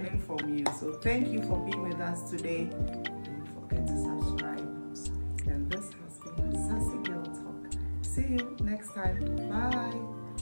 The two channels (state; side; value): inverted; both; correlation -1.00